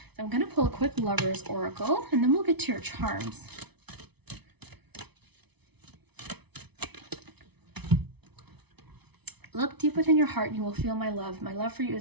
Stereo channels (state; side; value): late; left; 0.99 ms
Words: I'm going to pull a quick Lover's Oracle, and then we'll get to your charms. Look deep within your heart and you will feel my love. My love for you